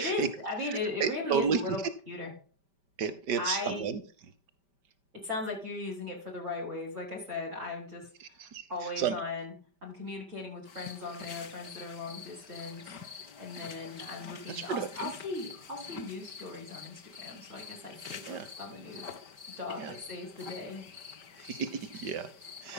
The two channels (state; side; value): late; left; 5.1 ms